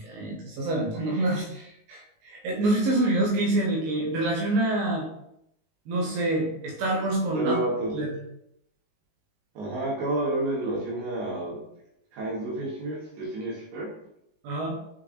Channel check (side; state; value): left; late; 19 ms